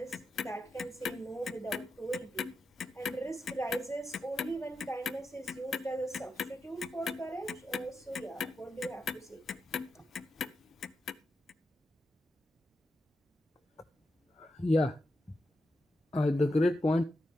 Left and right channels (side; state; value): both; normal; correlation 0.87